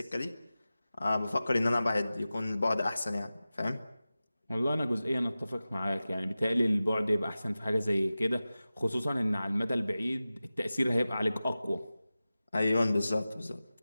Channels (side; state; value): both; inverted; correlation -0.95